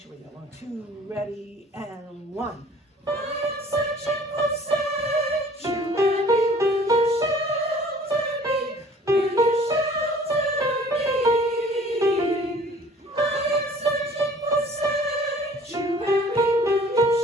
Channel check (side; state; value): both; normal; correlation 0.51